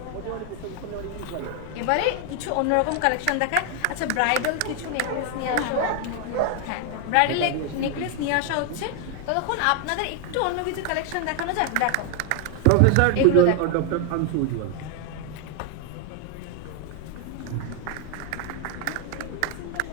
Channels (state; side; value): different; both; correlation 0.01